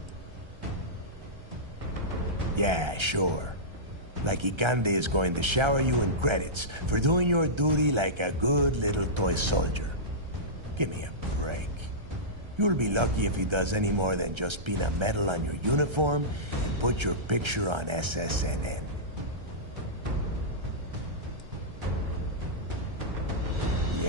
Yeah, sure. Like Ikande is going to shower you in credits for doing your duty like a good little toy soldier. Give me a break. You'll be lucky if he does any more than just pin a medal on your uniform and put your picture on SSNN.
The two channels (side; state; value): left; late; 1.3 ms